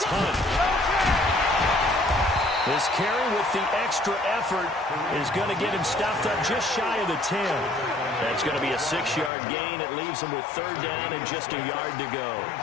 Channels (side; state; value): right; drops out; at 9.3 s